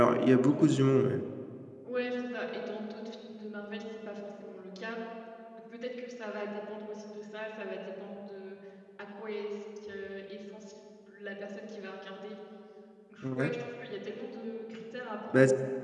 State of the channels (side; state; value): both; identical; correlation 1.00